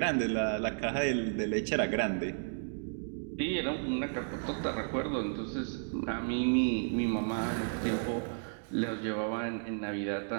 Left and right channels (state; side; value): silent; left; digital silence